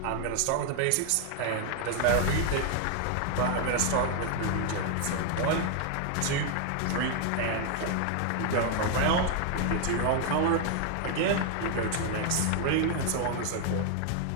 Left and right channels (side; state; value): both; different; correlation 0.00